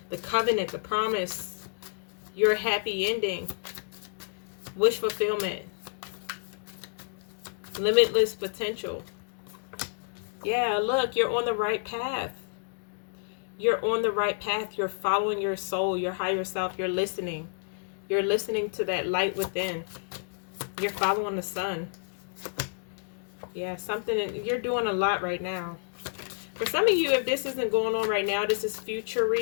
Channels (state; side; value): silent; right; digital silence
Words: The covenant, the promise. Your happy ending. Wish fulfillment. Limitless potential. Yeah, look, you're on the right path. You're on the right path. You're following your soul, your higher self. You're listening. You're listening to that light within. You're following the sun. Yeah, you're doing a lot right now. For some of you, if this isn't going on right now, this is future